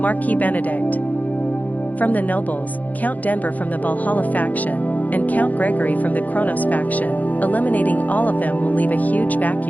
Benedict from the nobles, Count Denver from the Valhalla faction, and Count Gregory from the Kronos faction, eliminating all of them will leave a huge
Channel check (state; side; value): late; right; 0.079 ms